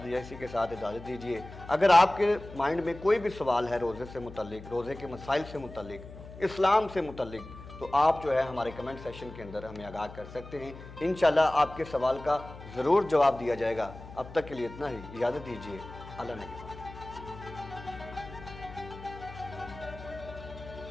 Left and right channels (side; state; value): left; noise; hum, 15 dB below the sound